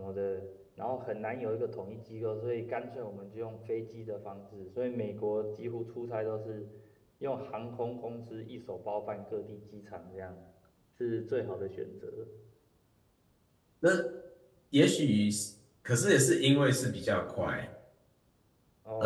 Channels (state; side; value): identical; both; correlation 1.00